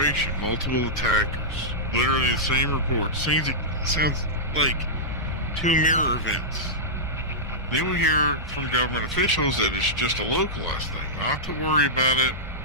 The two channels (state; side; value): normal; both; correlation -0.12